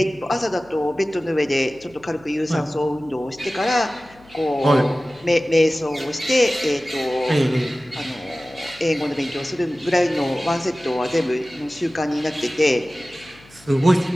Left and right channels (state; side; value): noise; left; hum, 25 dB below the sound